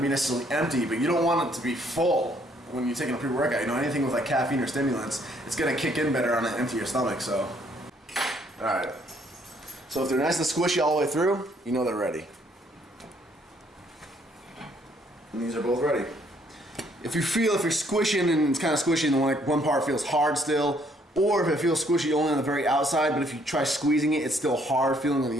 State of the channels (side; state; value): both; normal; correlation 0.66